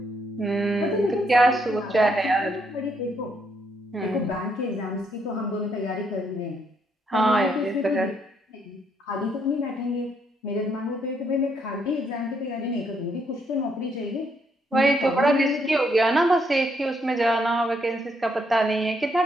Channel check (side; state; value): both; normal; correlation 0.74